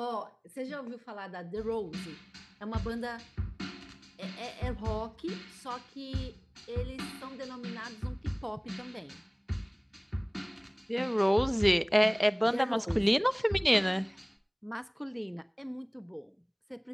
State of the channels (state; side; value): identical; both; correlation 1.00